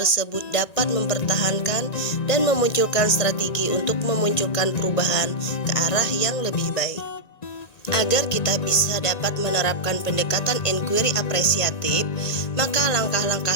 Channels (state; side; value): late; right; 1.9 ms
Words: dapat mempertahankan dan memunculkan strategi untuk memunculkan perubahan ke arah yang lebih baik. Agar kita bisa dapat menerapkan pendekatan inquiry apresiatif, maka langkah-langkah